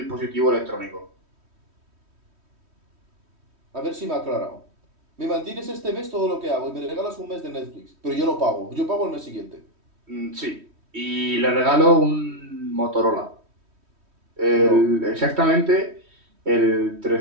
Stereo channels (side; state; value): left; late; 3.1 ms